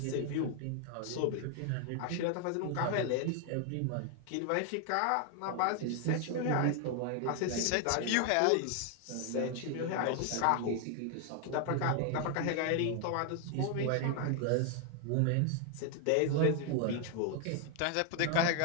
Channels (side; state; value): both; different; correlation 0.00